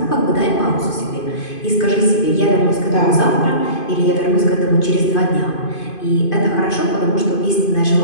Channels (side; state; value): right; late; 2.5 ms